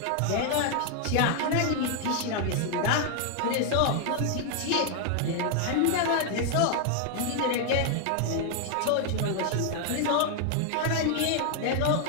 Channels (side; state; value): both; different; correlation 0.00